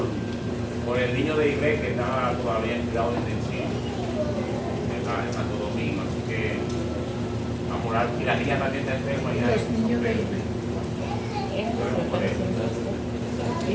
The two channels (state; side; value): identical; both; correlation 1.00